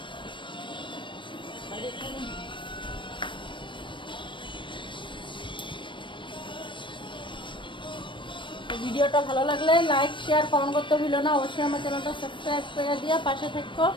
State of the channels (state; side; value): late; right; 0.24 ms